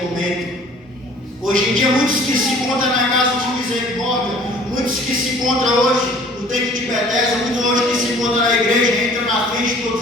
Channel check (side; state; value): both; normal; correlation 0.52